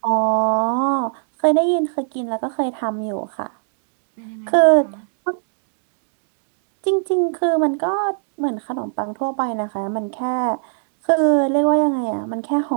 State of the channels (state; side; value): silent; left; digital silence